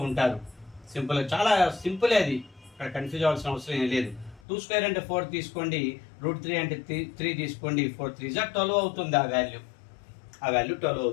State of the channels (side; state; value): right; drops out; at 4.4 s